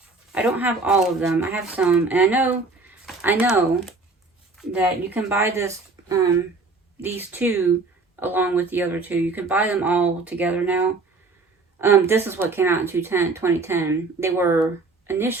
I don't have all of them. I have some. And I know that you can buy this, these 2 along with the other 2. You can buy them all together now. This is what came out in 2010. They were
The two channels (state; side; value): quieter; left; 3.8 dB